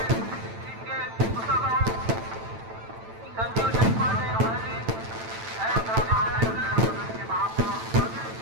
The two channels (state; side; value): late; left; 9.0 ms